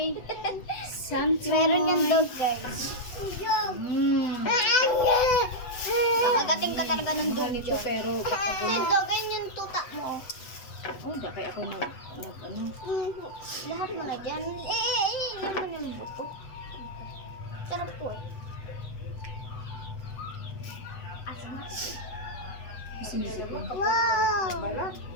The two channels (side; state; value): right; late; 8.0 ms